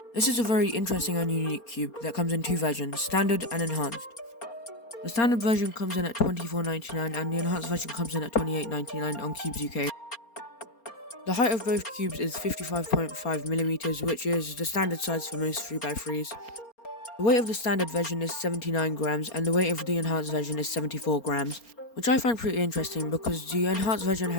This is a very interesting and unique cube that comes in two versions, standard and enhanced. The standard version comes in at $24.99 and the enhanced version comes in at $28.99 on Cubes UK. The height of both cubes is 55.5mm, which is the standard size for most 3x3s. The weight of the standard version is 79 grams and the weight of the enhanced version is 74 grams. Which I find pretty interesting because the enhanced version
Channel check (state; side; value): late; right; 4.3 ms